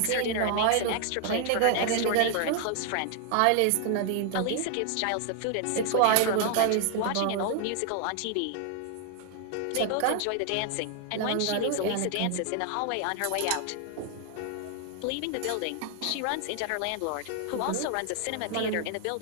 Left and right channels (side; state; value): both; different; correlation 0.00